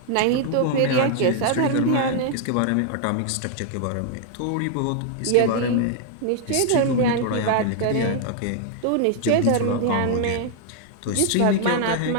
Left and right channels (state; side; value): different; both; correlation 0.00